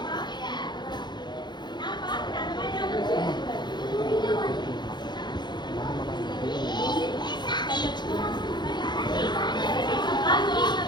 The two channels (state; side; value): late; right; 0.21 ms